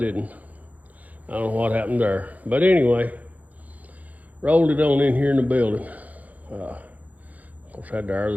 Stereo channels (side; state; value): left; late; 0.076 ms